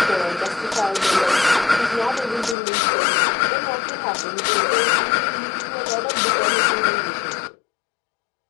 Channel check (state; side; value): drops out; right; at 2.6 s